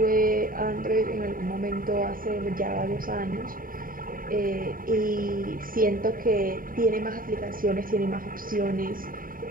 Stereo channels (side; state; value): left; late; 0.41 ms